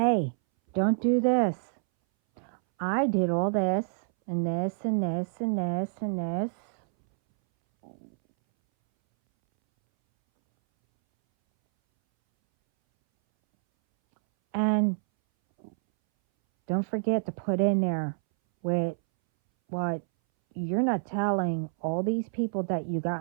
don't do this. I did all this, and this, and this, and this, and this. And don't forget to put in there with what you're not telling all these people that you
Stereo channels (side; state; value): left; silent; 59 dB below the other